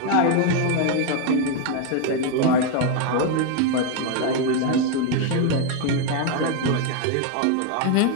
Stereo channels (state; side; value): different; both; correlation 0.01